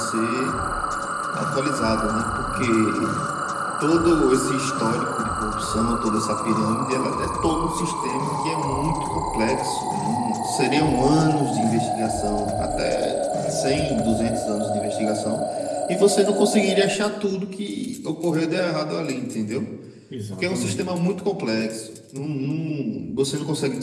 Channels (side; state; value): both; identical; correlation 1.00